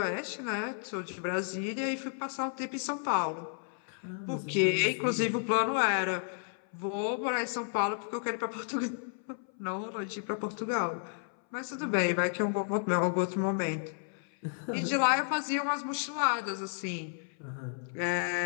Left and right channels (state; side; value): silent; right; 56 dB below the other